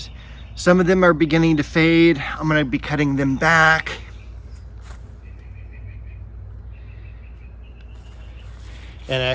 Some of them are beginning to fade. I'm going to be cutting them back. And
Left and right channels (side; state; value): both; identical; correlation 1.00